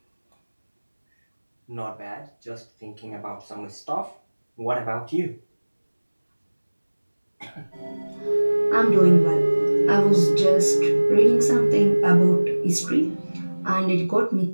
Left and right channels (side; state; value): both; inverted; correlation -1.00